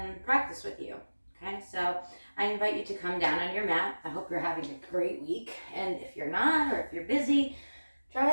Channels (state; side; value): inverted; both; correlation -1.00